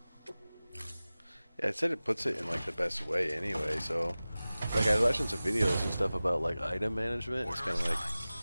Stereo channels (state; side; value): inverted; both; correlation -0.97